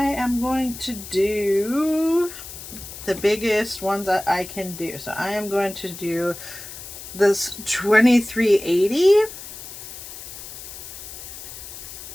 am going to do the biggest ones that I can do. So I am going to do this 2380.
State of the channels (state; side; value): noise; left; hiss, 12 dB below the sound